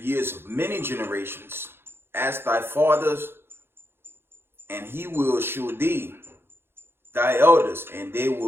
of many generations. Ask thy fathers, and he will shew thee, thy elders, and they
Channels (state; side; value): late; left; 0.11 ms